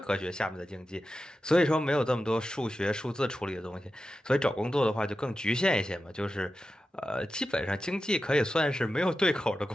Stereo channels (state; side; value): normal; both; correlation 0.92